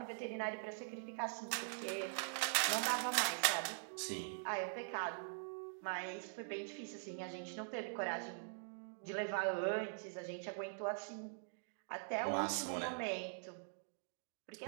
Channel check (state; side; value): silent; left; digital silence